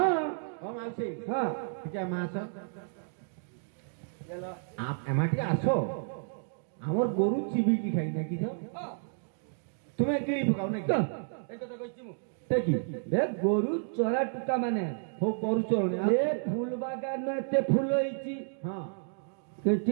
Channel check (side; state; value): left; silent; digital silence